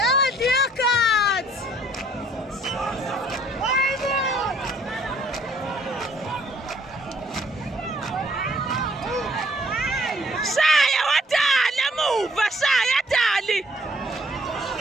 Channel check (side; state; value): both; normal; correlation 0.62